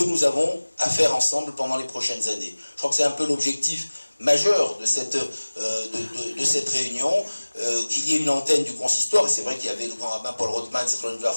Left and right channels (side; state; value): both; inverted; correlation -1.00